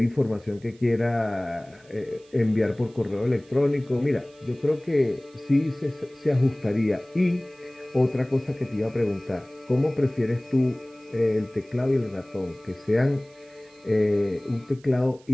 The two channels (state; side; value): noise; right; hiss, 29 dB below the sound